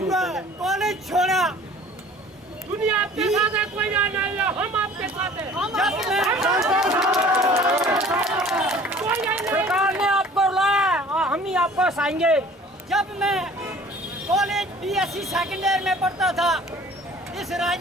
है, कॉलेज छोड़ा। दुनिया आपके साथ है, कोई नहीं है, हम आपके साथ हैं। सरकार ने आपको लाया और हम ही आपको हंसाएंगे। जब मैं कॉलेज BSc सेकेंड ईयर में पढ़ता था, इस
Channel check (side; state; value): both; normal; correlation 0.49